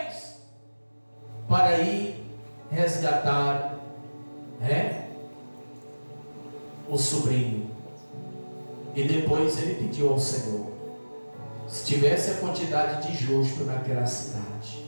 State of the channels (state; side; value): inverted; both; correlation -1.00